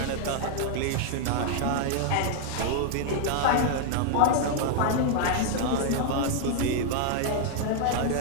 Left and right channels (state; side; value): different; both; correlation 0.00